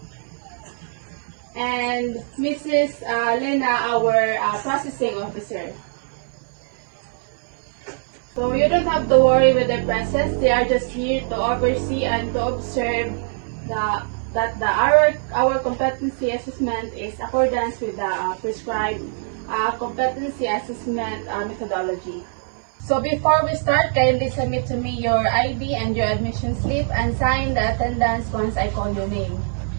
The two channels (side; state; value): left; silent; 64 dB below the other